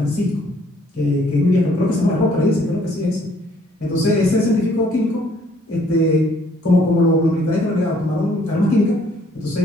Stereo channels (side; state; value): both; normal; correlation 0.63